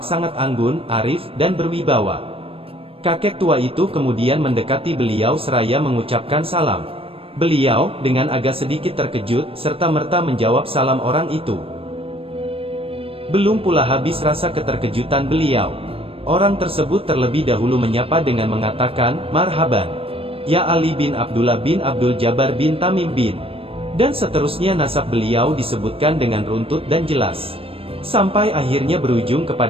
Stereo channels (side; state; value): left; late; 0.27 ms